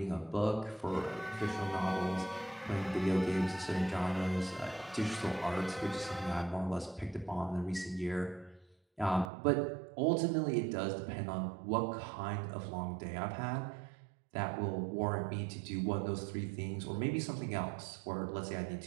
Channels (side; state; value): left; drops out; at 9.3 s